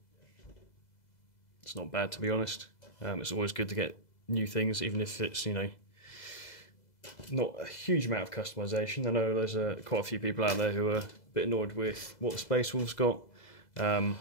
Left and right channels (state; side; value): late; right; 2.0 ms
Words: It's not bad, to be honest. It's always good to get new things, even if it's, you know, not a huge amount of customization. I know there's quite a few people out there who are a bit annoyed with what the Space Wolves got.